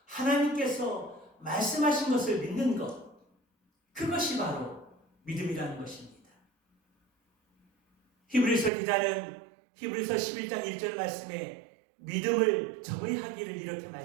하나님께서 말씀하신 것을 믿는 것, 그것이 바로 믿음이라는 것입니다. 히브리서 기자는 히브리서 11장 1절 말씀에 믿음을 정의하기를 이렇게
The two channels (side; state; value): left; drops out; at 8.7 s